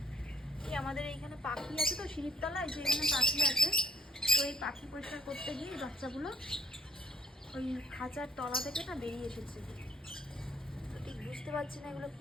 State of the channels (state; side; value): normal; both; correlation 0.60